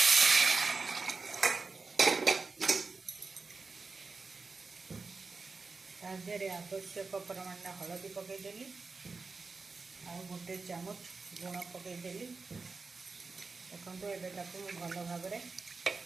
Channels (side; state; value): left; quieter; 4.3 dB